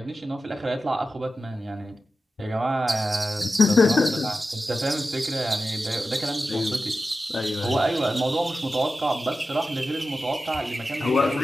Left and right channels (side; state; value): both; normal; correlation 0.92